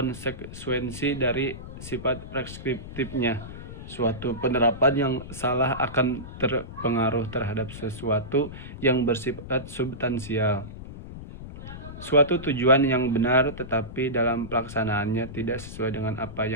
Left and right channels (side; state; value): left; noise; rumble, 12 dB below the sound